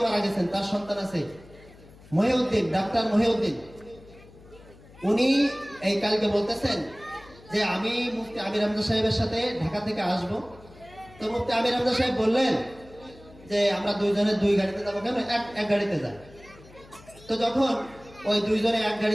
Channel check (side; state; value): left; noise; hum, 23 dB below the sound